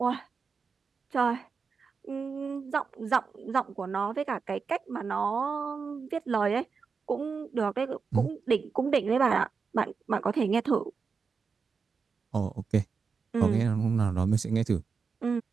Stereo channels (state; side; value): quieter; left; 5.3 dB